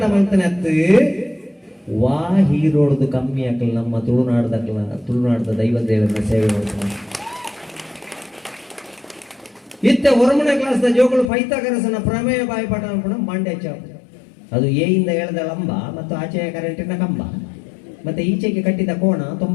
ಮಾಡ್ತಾನತ್ತು ವಾ ಹೀರೋಡ್ದು ಕಮ್ಮಿ ಹಾಕಲ್ಲ ನಮ್ಮ ತುಳುನಾಡದ ದೈವದೇವರ ಸೇವೆ ಮಾಡ್ತಾನೆ ಇತ್ತ ಹೊರಮನೆ ಕ್ಲಾಸ್ ಜೋಗಳು ಪೈಥಾಗರಸನ ಪ್ರಮೇಯ ಬಾಯಿಪಾಠ ಮಾಡ್ಕೊಂಡು ಮಂಡ್ಯ ಅದು ಎಯಿಂದ ಎಳೆದ ಲಂಬ ಮತ್ತು ಆಚೆಯ ಕರೆಂಟಿನ ಕಂಬ ಮತ್ತೆ ಈಚೆಗೆ ಕಟ್ಟಿದ ಕೋಣ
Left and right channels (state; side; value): drops out; right; at 11.3 s